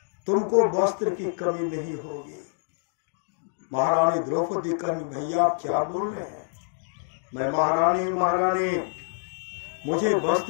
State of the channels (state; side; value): silent; right; digital silence